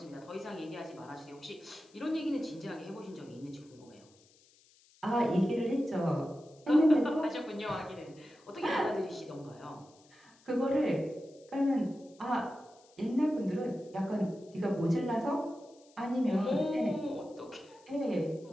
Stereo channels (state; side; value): noise; left; hiss, 29 dB below the sound